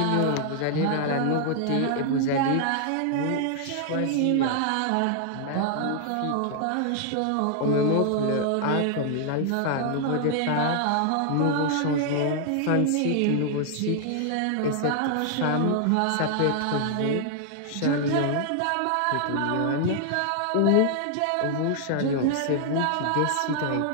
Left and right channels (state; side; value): different; both; correlation 0.00